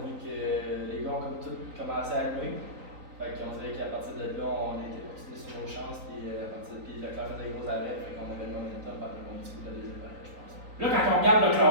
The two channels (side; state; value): left; late; 3.9 ms